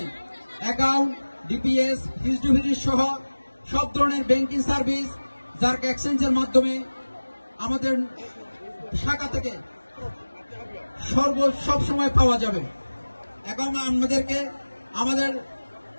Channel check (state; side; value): inverted; both; correlation -1.00